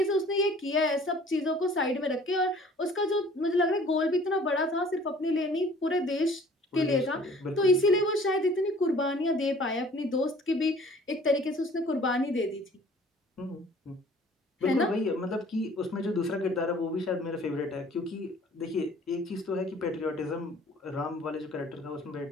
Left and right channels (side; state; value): both; normal; correlation 0.52